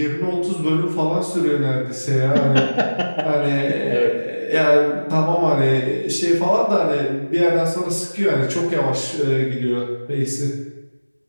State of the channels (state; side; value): inverted; both; correlation -1.00